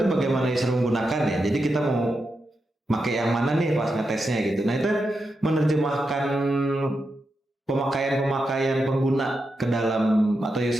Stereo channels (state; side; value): normal; both; correlation 0.87